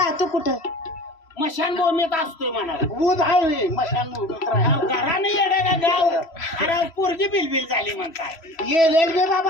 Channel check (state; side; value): late; right; 3.1 ms